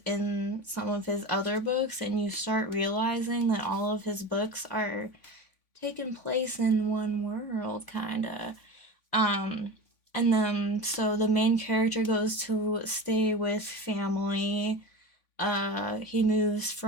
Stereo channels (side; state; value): right; late; 3.5 ms